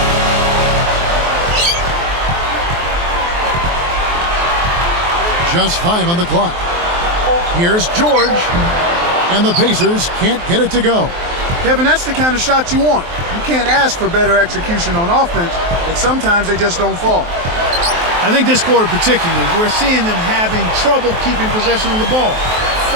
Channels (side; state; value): left; late; 23 ms